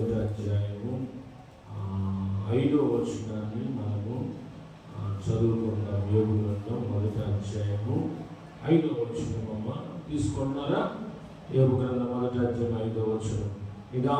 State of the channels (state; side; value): identical; both; correlation 1.00